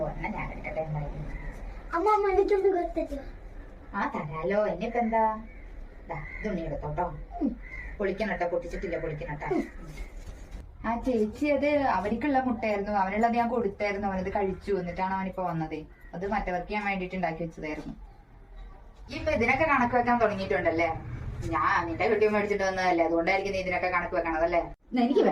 എന്നാ ഞാൻ എടുക്കട്ടെ. ആ തരാലോ, എന്നിപ്പോ എന്താ? തുണി എടുത്തോട്ടോ, പൊളിക്കണട്ടോ, പൊട്ടിച്ചിട്ടില്ല, പൊളിക്കണട്ടോ. ആ ചേച്ചി അത് അവർക്കുള്ള മുട്ടയായിരുന്നു, അവനുള്ളത് ഞാൻ കൊടുത്തായിരുന്നു, അവനത് കഴിച്ചു. എന്നിട്ടാണ് അവനിപ്പോ വന്നത്. അത് മറ്റവർക്ക് ഞാൻ വേണ്ടിട്ട് ഉണ്ടാക്കി വെച്ചതായിരുന്നു. ഇപ്പൊ ഇതിനൊക്കെ കണക്ക് വെക്കാൻ തുടങ്ങിയിട്ടുണ്ടല്ലേ? ഞാൻ നിന്റെ കുട്ടിയും മേടിച്ചിട്ട് വന്നതല്ലേ, അതുകൊണ്ടായിരിക്കും നീ ഇതിനൊക്കെ കണക്ക് വെക്കണതല്ലേ? എനിക്ക്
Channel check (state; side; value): identical; both; correlation 1.00